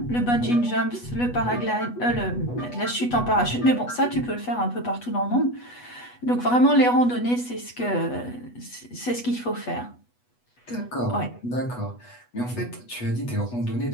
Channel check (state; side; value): late; right; 8.2 ms